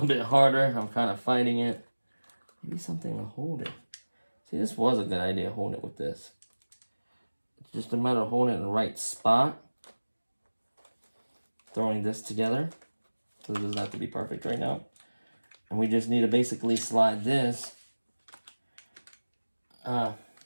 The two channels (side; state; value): both; inverted; correlation -1.00